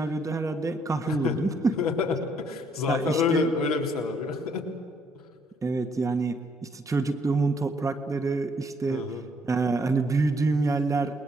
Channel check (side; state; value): both; normal; correlation 0.69